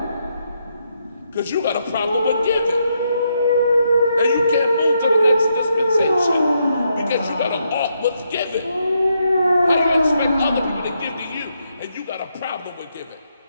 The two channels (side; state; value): both; inverted; correlation -0.79